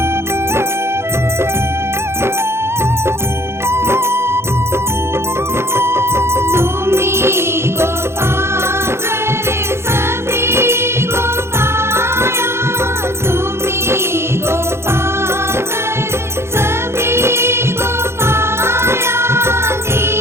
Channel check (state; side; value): late; left; 0.12 ms